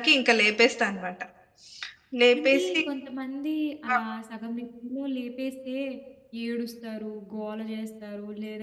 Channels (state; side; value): identical; both; correlation 1.00